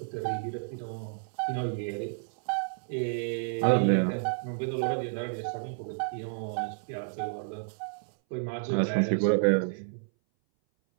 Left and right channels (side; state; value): left; silent; 57 dB below the other